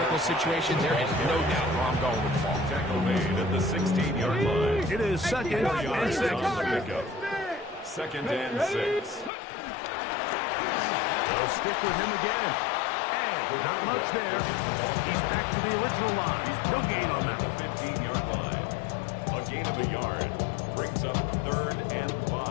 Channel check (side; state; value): right; drops out; at 9.3 s